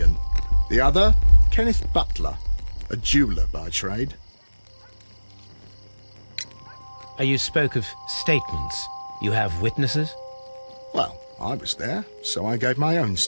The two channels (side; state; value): both; inverted; correlation -1.00